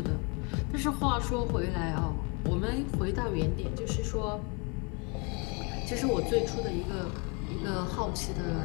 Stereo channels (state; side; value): quieter; right; 32.9 dB